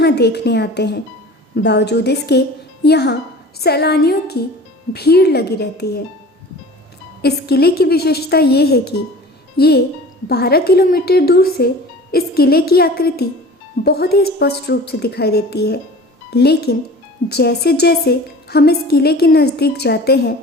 देखने आते हैं। बावजूद इसके यहाँ सैलानियों की भीड़ लगी रहती है। इस किले की विशेषता ये है कि ये 12 किलोमीटर दूर से इस किले की आकृति बहुत ही स्पष्ट रूप से दिखाई देती है, लेकिन जैसे जैसे हम इस किले के नज़दीक जाते हैं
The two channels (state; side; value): normal; both; correlation 0.41